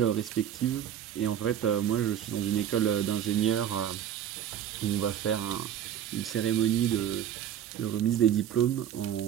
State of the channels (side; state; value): left; quieter; 10.0 dB